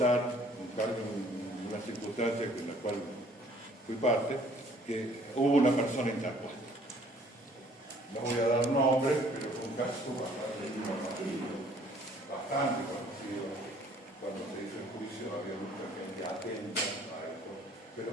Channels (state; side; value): normal; both; correlation 0.58